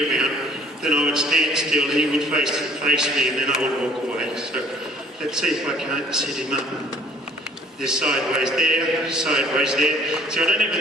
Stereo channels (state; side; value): normal; both; correlation 0.55